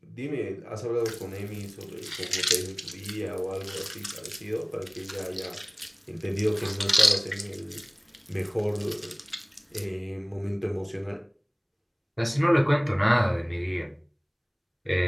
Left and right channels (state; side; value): identical; both; correlation 1.00